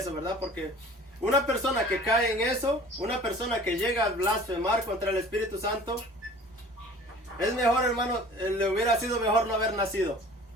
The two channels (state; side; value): normal; both; correlation 0.46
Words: ¿verdad? Porque una persona que cae en eso, una persona que llega a blasfemar contra el Espíritu Santo, es mejor, hermano, le hubiera sido mejor no haber nacido.